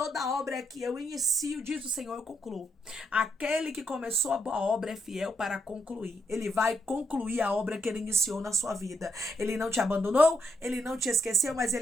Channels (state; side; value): normal; both; correlation 0.78